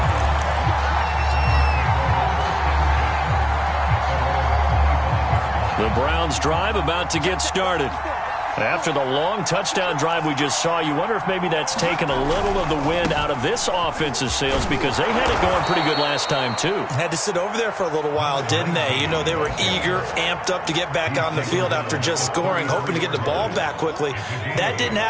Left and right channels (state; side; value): identical; both; correlation 1.00